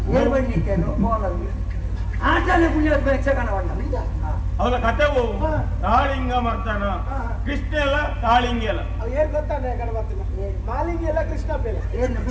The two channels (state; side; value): identical; both; correlation 1.00